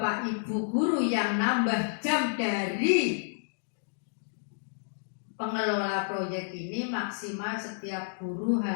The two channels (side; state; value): right; silent; digital silence